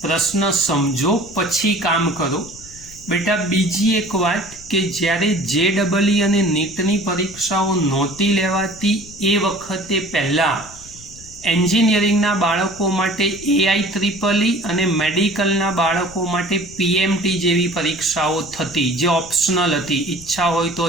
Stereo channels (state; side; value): noise; left; rumble, 20 dB below the sound